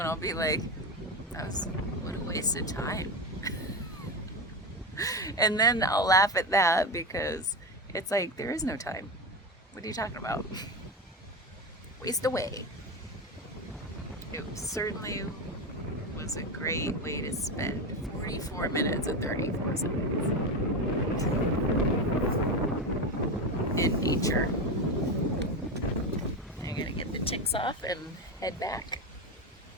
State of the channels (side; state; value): both; normal; correlation 0.18